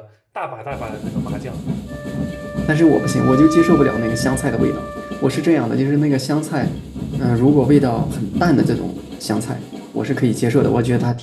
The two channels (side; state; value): both; identical; correlation 1.00